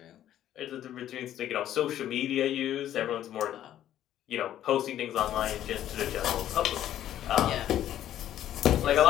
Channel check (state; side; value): quieter; right; 11.8 dB